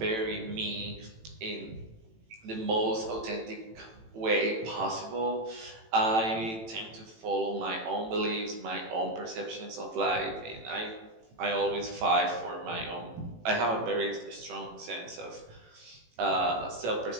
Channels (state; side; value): late; left; 18 ms